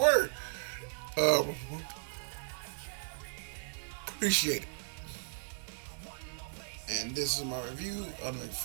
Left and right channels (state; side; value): silent; left; 54 dB below the other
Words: Appreciate it. And this is my review of the